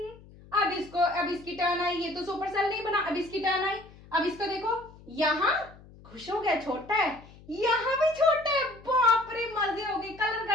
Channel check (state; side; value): noise; left; hum, 22 dB below the sound